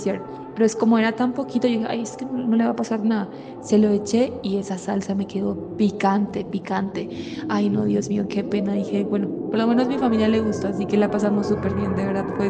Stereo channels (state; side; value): identical; both; correlation 1.00